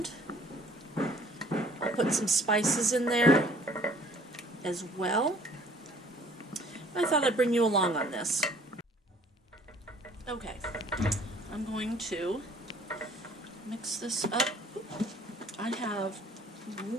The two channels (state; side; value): normal; both; correlation 0.56